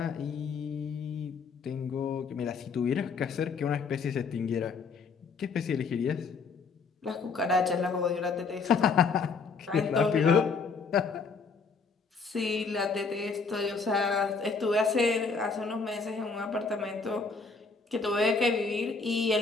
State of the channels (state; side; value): quieter; right; 4.8 dB